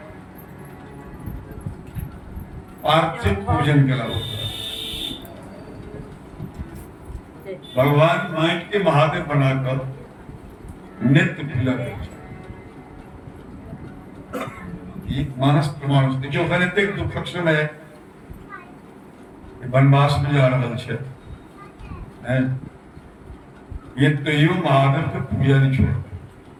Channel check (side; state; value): both; identical; correlation 1.00